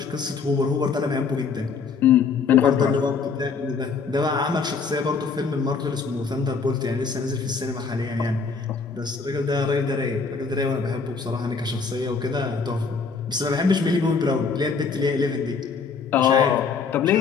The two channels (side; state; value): right; quieter; 5.2 dB